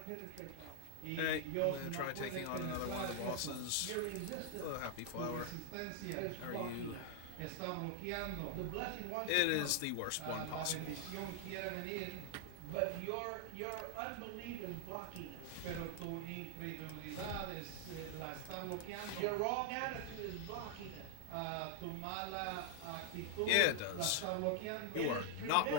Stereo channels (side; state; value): both; different; correlation 0.00